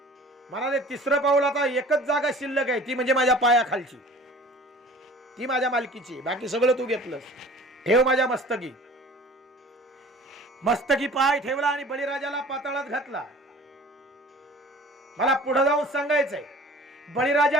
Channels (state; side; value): normal; both; correlation 0.46